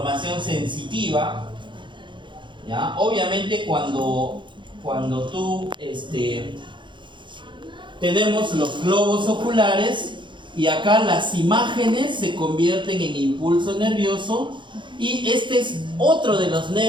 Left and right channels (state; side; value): late; left; 0.23 ms